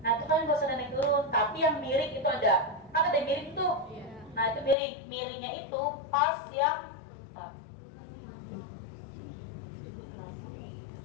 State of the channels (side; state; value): right; drops out; at 4.8 s